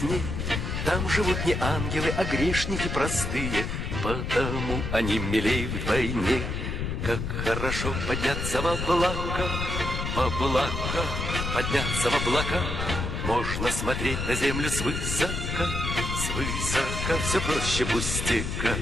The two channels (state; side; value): noise; left; rumble, 3 dB below the sound